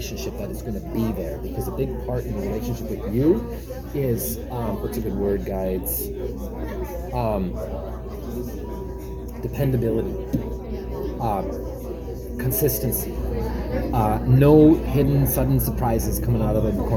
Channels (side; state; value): both; identical; correlation 1.00